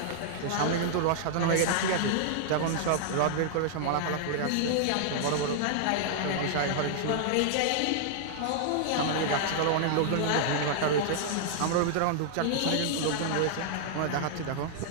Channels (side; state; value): both; different; correlation -0.01